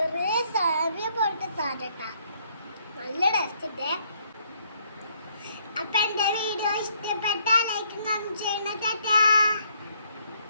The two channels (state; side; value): inverted; both; correlation -0.68